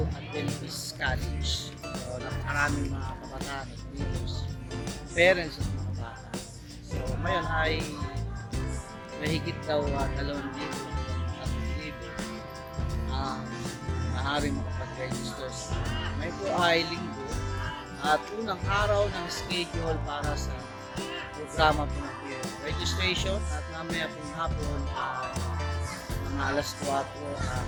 Adventist College. So, napakaraming mga kabataan at leaders, parents at mga bata. So, ngayon ay mahigit daw 2,000 at libo ang maaaring makapag-register sa may po ay linggo at unang araw ng schedule para sa programa po ng registration at mamaya pong hapon mga alas 4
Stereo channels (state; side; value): identical; both; correlation 1.00